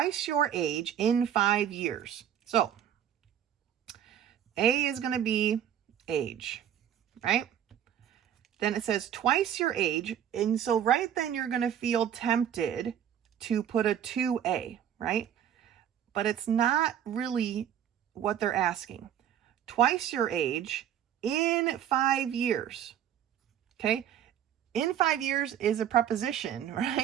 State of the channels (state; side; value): quieter; left; 9.9 dB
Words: your age in 5 years. So A is going to be age, right? Then it says twice your age. And so right then you're going to feel tempted to put a 2a, right? But it's not really what they're asking. Twice your age in 5 years. Okay. In 5 years is a preposition,